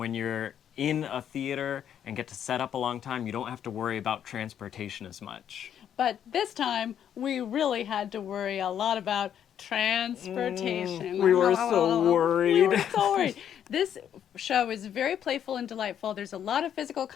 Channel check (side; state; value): right; quieter; 9.4 dB